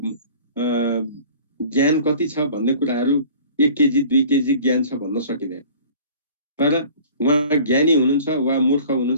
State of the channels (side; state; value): both; inverted; correlation -0.47